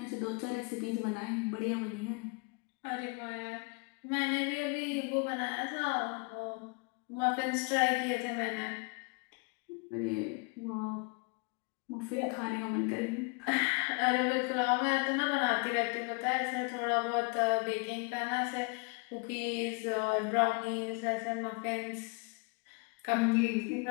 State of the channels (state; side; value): quieter; right; 32.3 dB